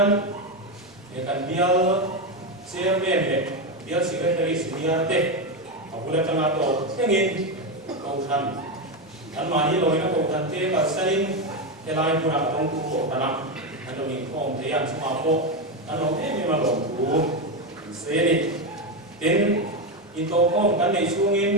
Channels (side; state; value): both; normal; correlation 0.11